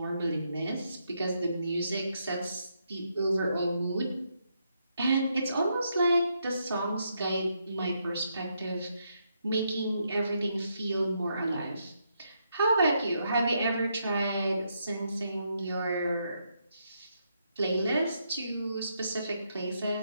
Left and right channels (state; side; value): inverted; both; correlation -0.78